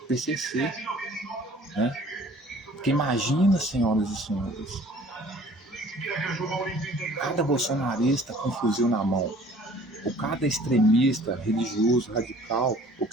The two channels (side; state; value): both; normal; correlation 0.52